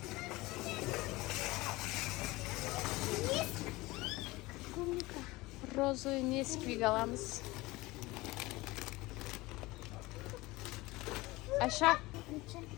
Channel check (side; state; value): right; quieter; 20.8 dB